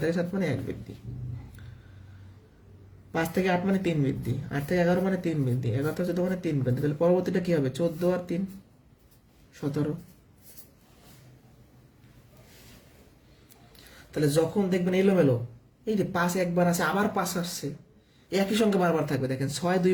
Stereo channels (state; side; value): identical; both; correlation 1.00